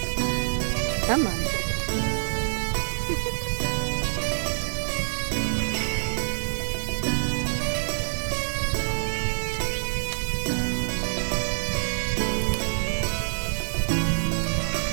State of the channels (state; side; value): silent; left; digital silence